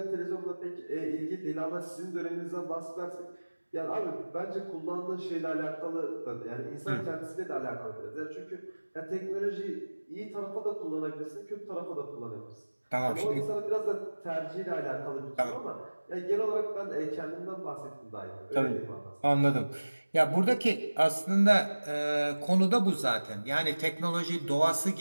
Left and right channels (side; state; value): both; inverted; correlation -1.00